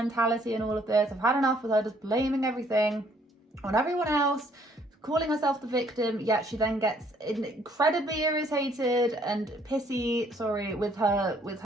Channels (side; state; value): both; normal; correlation 0.64